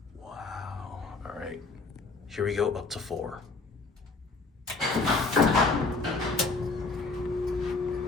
Wow. All right, here we go up to 4.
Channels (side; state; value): right; quieter; 3.9 dB